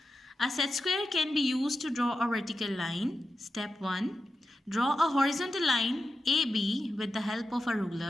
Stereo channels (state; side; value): normal; both; correlation 0.91